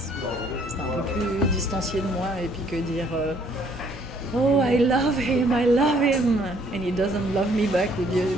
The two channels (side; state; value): both; normal; correlation 0.63